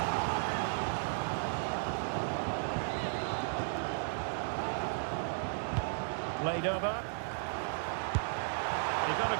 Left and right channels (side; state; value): left; silent; digital silence